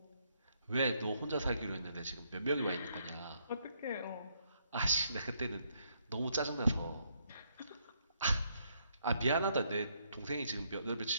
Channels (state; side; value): inverted; both; correlation -0.73